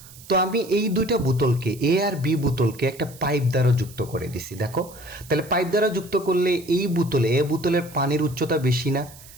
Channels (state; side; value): noise; right; hiss, 20 dB below the sound